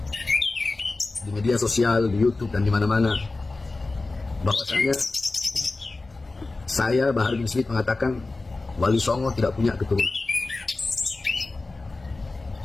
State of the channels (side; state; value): right; quieter; 3.4 dB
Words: di media sosial, di YouTube dan di mana-mana, bahwasanya saya Bahar bin Smith mengatakan Wali Songo tidak punya keturunan.